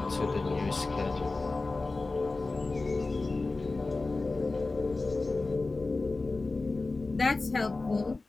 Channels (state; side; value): quieter; right; 3.5 dB